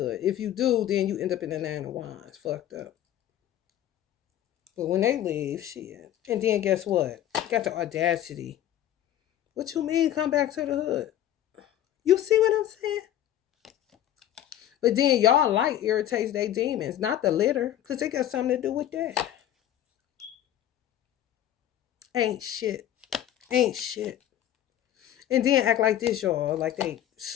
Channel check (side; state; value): right; quieter; 11.9 dB